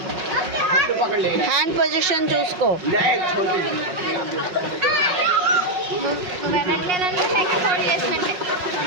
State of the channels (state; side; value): late; left; 5.4 ms